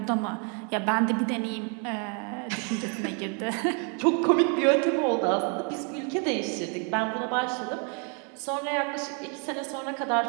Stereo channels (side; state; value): left; quieter; 37.7 dB